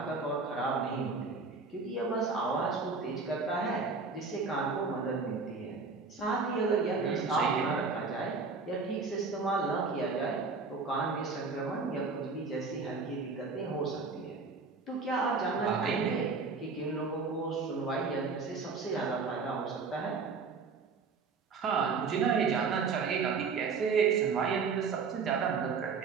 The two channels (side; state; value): left; quieter; 4.6 dB